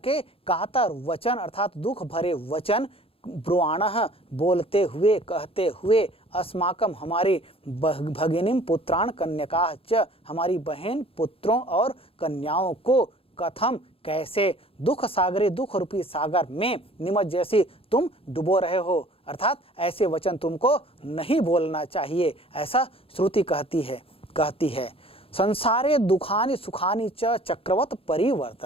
कातर वचन अर्थात दुख भरे वचन ब्रुवाणः बोलते हुए, कहते हुए, अस्माकम हमारे, भगिनीम पुत्रान कन्यकाः च हमारी बहन, पुत्रों और कन्याओं को, कथम कैसे, दुख सागरे दुख रूपी सागर में, निमज्जयसि तुम डुबो रहे हो, अर्थात ऐसे वचन तुमको नहीं बोलना चाहिए, ऐसा श्रुति कहती है। संसारे दुखानि सुखानि च चक्रवत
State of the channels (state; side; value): late; right; 0.27 ms